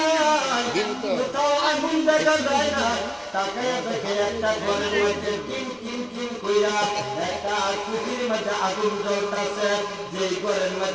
কোথাও আগুন দেখা যায় না। তাকাইয়া দেখে একটা ঘরের মধ্যে টিম টিম টিম কইরা করিয়া একটা কুঠির মধ্যে আগুন জ্বলতেছে, যে ঘরের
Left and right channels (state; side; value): identical; both; correlation 1.00